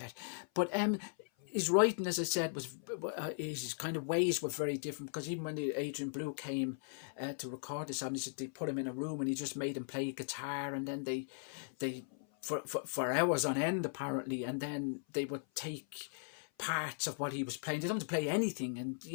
But his writing, as I said, was his kind of ways were very different, because even when the Adrian Blue came to record this album, they put him in a room and he just made him play guitar, and then they for hours on end apparently, and then they would take parts of what he was playing. They don't have to play anything, and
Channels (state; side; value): silent; right; 52 dB below the other